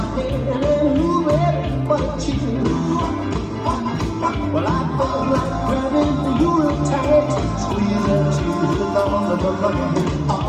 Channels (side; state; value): both; identical; correlation 1.00